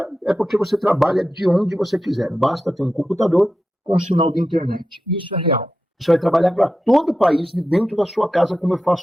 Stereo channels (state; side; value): normal; both; correlation 0.90